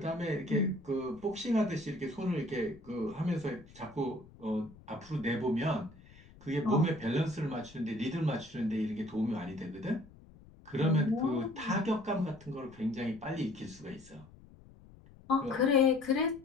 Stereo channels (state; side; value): noise; left; rumble, 22 dB below the sound